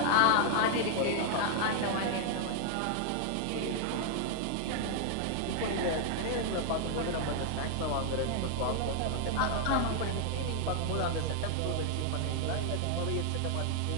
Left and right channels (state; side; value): different; both; correlation 0.00